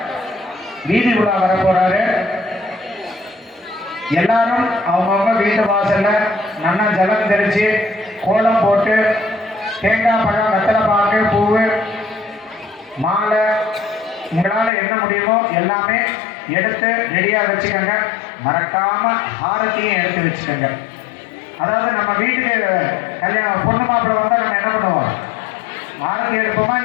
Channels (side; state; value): right; drops out; at 14.7 s